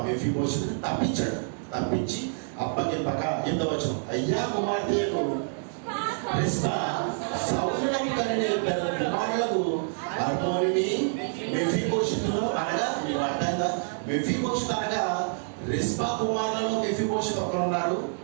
మెఫీబోషెతును తప్పించాడు. తప్పించి అప్పగింపక ఎంతవచనం, అయ్యా కుమార్తెకు రిస్పా సౌలునకు కనిన 2 కుమారులకు అర్మోనిని మెఫీబోషెతును అనగా, మీకు అర్థంగా మెఫీబోషెతు అనగా రిస్పా కుమారులలో మెఫీబోషెతు ఒకరున్నారు,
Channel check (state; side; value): silent; left; digital silence